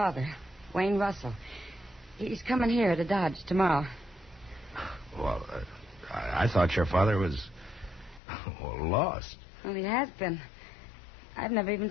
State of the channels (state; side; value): drops out; right; at 8.2 s